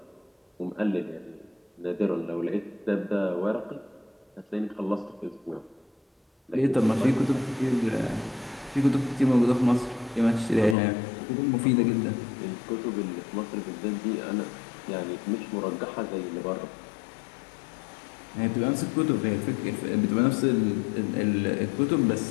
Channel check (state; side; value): drops out; right; at 10.8 s